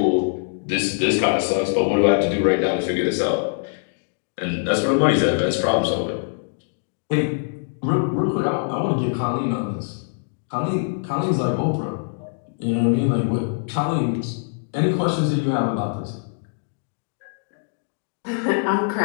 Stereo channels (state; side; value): silent; right; digital silence